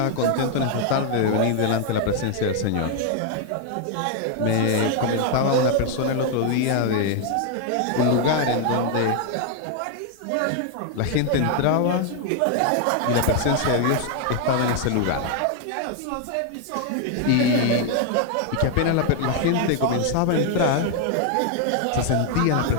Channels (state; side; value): different; both; correlation 0.00